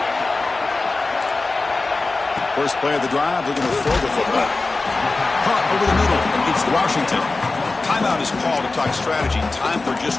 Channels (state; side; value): quieter; right; 3.5 dB